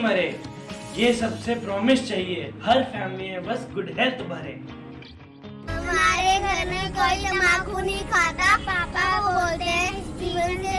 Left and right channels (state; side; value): identical; both; correlation 1.00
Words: मरे, ये सबसे प्रॉमिस चाहिए, हर फैमिली में बस गुड हेल्थ भरे। हमारे घर में कोई तंबाकू नहीं खाता, पापा बोलते हैं जीवन से